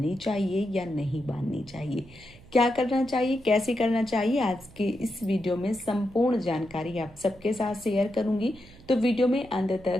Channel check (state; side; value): noise; right; hum, 23 dB below the sound